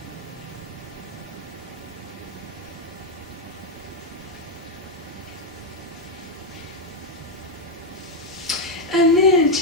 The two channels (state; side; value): normal; both; correlation 0.04